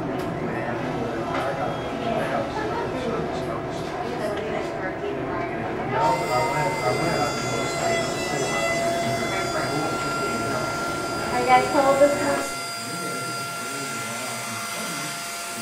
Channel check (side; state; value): both; identical; correlation 1.00